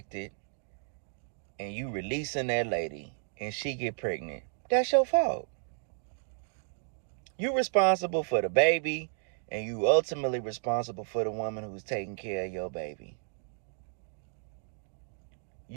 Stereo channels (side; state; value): left; silent; digital silence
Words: and you releasing that lady and she get pregnant, that's your fault. You responsible for the baby and you ultimately responsible for the woman who's taking care of your baby.